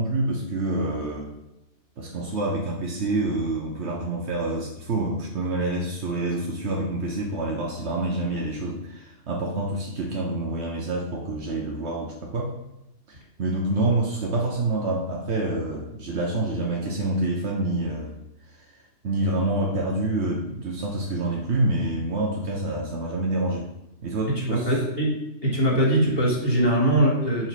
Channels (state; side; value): late; left; 3.2 ms